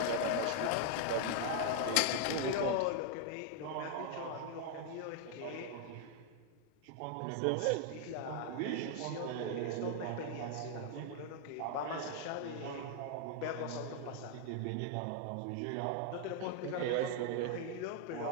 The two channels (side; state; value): both; different; correlation 0.00